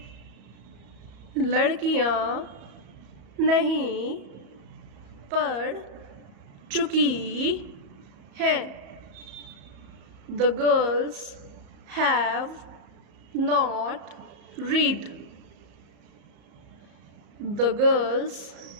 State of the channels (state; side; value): late; left; 34 ms